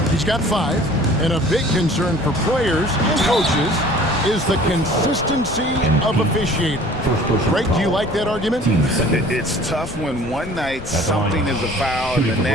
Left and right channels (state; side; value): noise; left; rumble, 14 dB below the sound